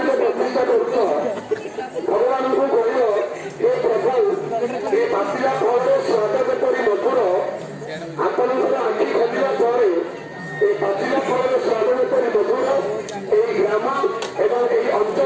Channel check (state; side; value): identical; both; correlation 1.00